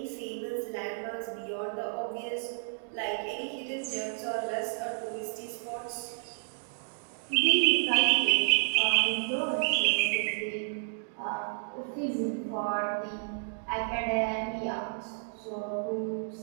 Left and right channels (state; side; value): silent; left; digital silence